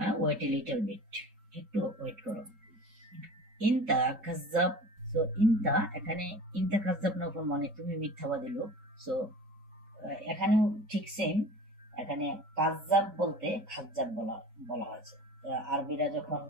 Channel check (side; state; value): left; late; 4.8 ms